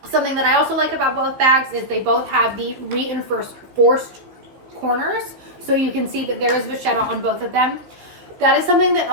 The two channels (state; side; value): late; left; 15 ms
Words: Something that I also like about both bags is they both have the reinforced corners. So you can see that there is vachetta on both of them. That is something that